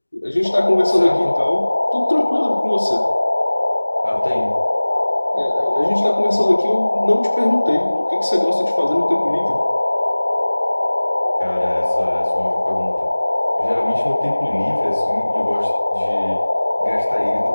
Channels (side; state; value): both; inverted; correlation -1.00